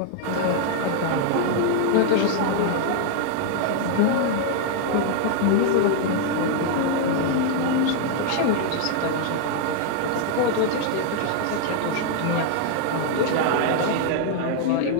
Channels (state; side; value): different; both; correlation 0.00